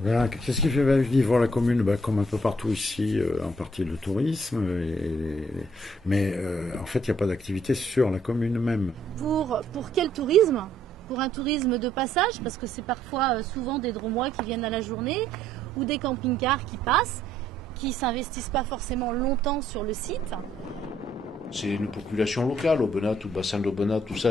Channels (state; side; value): normal; both; correlation 0.66